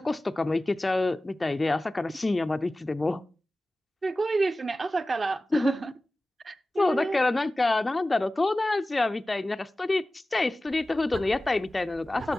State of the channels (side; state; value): both; normal; correlation 0.96